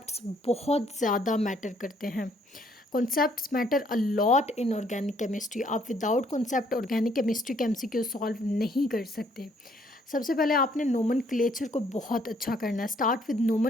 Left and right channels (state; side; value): normal; both; correlation 0.66